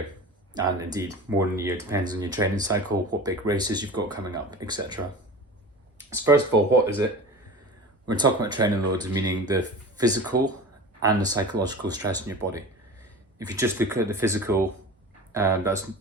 and indeed more than a year, depends on your training cycle, what big races you've got coming up, etc. So first of all, what is it? We're talking about training loads, meaning the physical and the psychological stress in your body. If you just look at the physical, that's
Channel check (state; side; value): normal; both; correlation 0.35